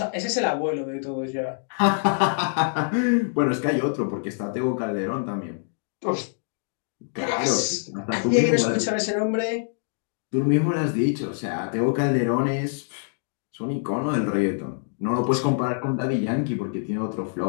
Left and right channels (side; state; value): right; silent; digital silence